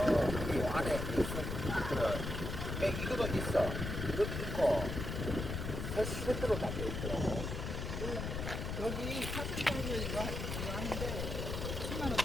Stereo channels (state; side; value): noise; left; rumble, 4 dB below the sound